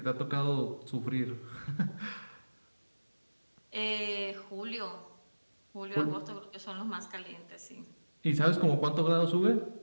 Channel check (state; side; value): inverted; both; correlation -1.00